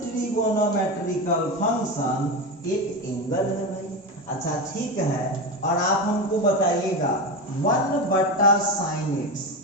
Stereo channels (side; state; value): both; normal; correlation 0.19